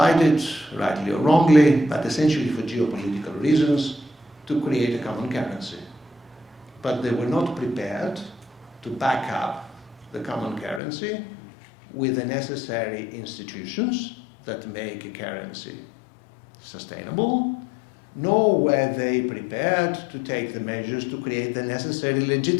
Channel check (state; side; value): drops out; right; at 10.8 s